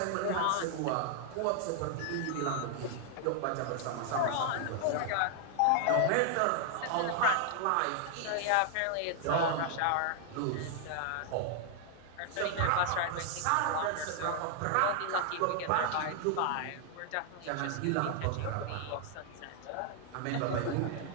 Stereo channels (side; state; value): both; different; correlation 0.00